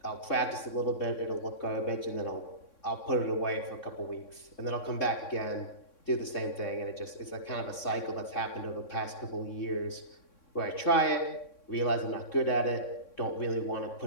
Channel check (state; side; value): late; right; 3.6 ms